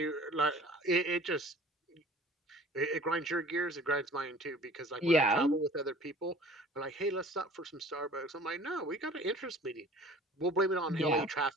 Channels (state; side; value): normal; both; correlation 0.48